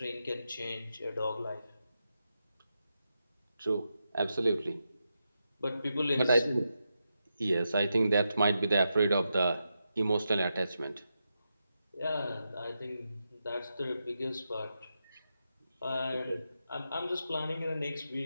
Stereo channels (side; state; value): both; inverted; correlation -0.87